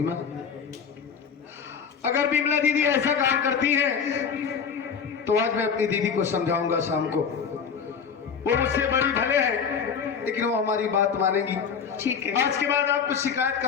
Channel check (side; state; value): right; quieter; 6.6 dB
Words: माँ, अगर विमला दीदी ऐसा काम करती है तो आज मैं अपनी दीदी को समझाऊंगा शाम को। वो मुझसे बड़ी भले है लेकिन वो हमारी बात मानेगी। ठीक है, आज के बाद आपको शिकायत